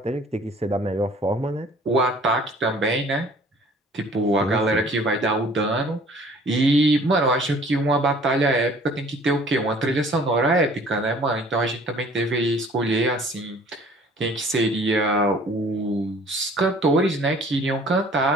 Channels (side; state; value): both; normal; correlation 0.52